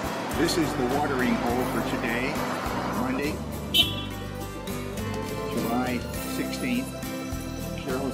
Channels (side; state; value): both; identical; correlation 1.00